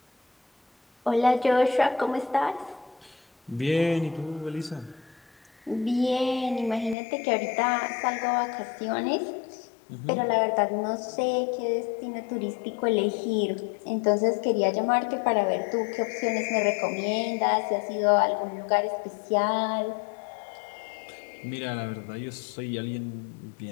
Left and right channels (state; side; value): drops out; right; at 7.0 s